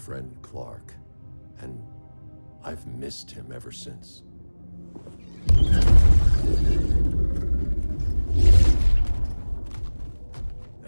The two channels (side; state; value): both; inverted; correlation -1.00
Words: Clark, and I've missed him ever since.